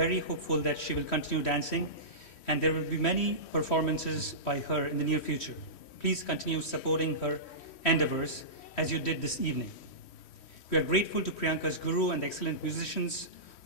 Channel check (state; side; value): late; right; 3.1 ms